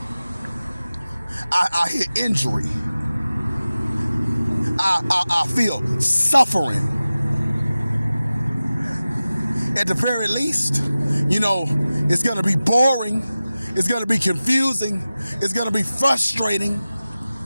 hear injury. I feel suffering. At the very least, it's gonna be boring. It's gonna be confusing. It's gonna be frustrating.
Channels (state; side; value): inverted; both; correlation -0.96